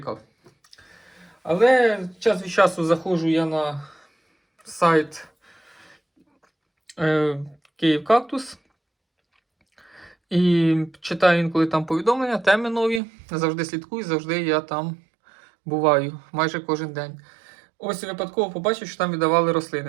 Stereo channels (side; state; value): left; drops out; at 13.0 s